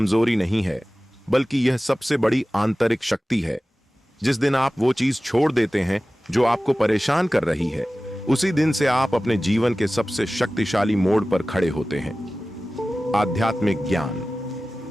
नहीं है, बल्कि यह सबसे बड़ी आंतरिक शक्ति है। जिस दिन आप वो चीज छोड़ देते हैं जो आपको परेशान कर रही है, उसी दिन से आप अपने जीवन के सबसे शक्तिशाली मोड़ पर खड़े होते हैं। आध्यात्मिक ज्ञान।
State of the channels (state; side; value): normal; both; correlation 0.96